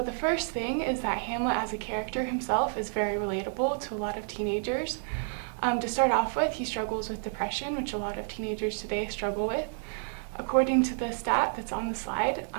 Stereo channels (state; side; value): silent; left; digital silence